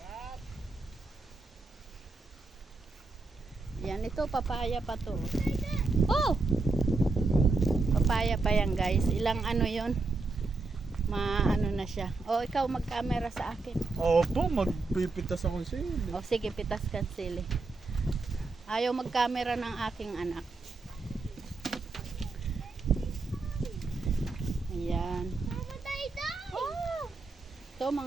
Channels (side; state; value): left; quieter; 3.7 dB